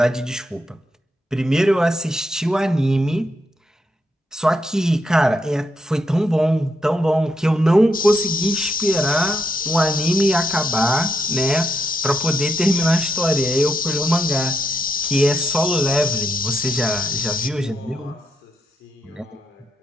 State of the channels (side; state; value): both; normal; correlation 0.80